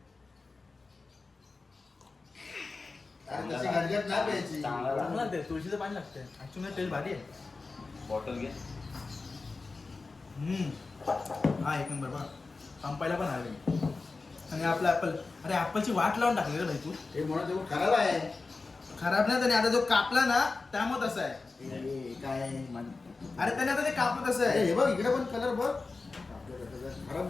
अरे तशी गरजेत नाही प्यायची. चांगला ते तुळशीचं पाणी लागतंय. ऍक्च्युअली टेस्ट भारी आहे. बॉटल घे. हा एक नंबर बघ. संपायला पण आले. आणि आपला ॲपल, अरे ॲपलची वाट लावून टाकली रे भाई तू. हे म्हणून ते खराब आहे. खराब नाही, त्याने आता जो कापला ना त्यामुळे तसं आहे. काय अरे त्याने आता ते कापलं तसं आहे. हे बघ इकडे पण कलर बघ. खराब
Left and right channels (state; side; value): quieter; right; 3.9 dB